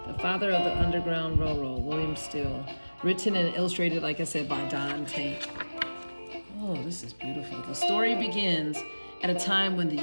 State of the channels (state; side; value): inverted; both; correlation -1.00